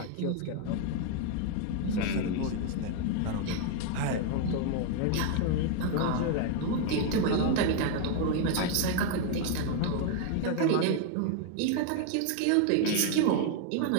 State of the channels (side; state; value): both; different; correlation 0.00